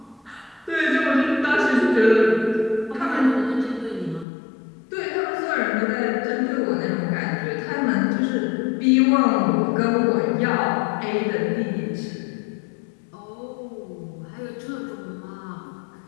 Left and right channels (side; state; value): right; drops out; at 4.2 s